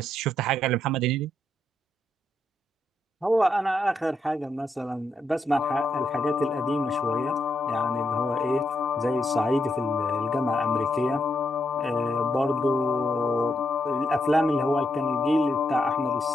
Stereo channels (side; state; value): both; normal; correlation 0.80